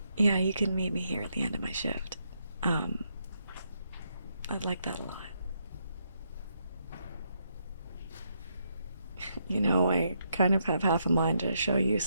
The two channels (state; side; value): inverted; both; correlation -0.78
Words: yeah, you can meet me here at the end of my shift. Um, I'd like that a lot. You know, I kind of have half a mind to show you